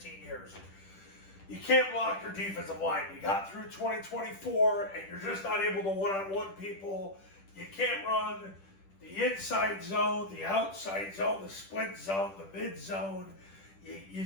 years. You can't block your defensive line. You got through 2024 and you're just not able to one-on-one people. You can't run the inside zone, the outside zone, the split zone, the mid zone. You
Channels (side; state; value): right; late; 10 ms